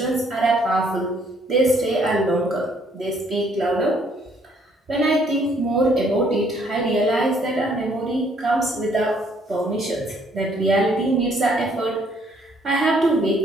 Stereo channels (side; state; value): both; normal; correlation 0.65